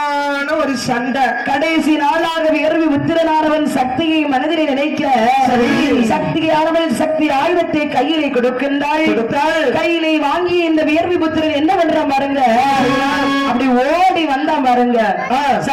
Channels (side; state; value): both; identical; correlation 1.00